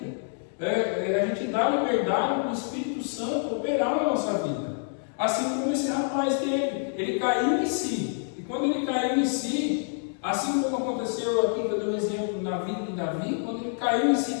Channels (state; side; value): silent; right; 60 dB below the other